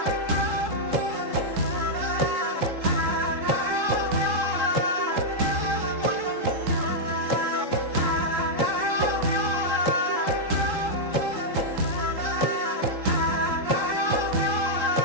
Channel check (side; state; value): left; late; 3.8 ms